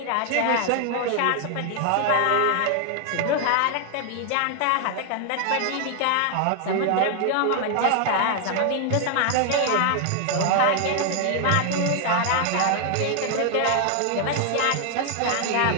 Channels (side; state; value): both; different; correlation 0.00